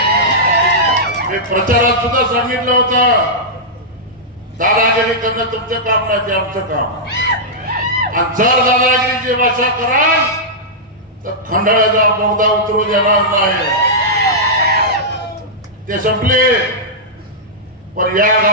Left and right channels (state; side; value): normal; both; correlation -0.11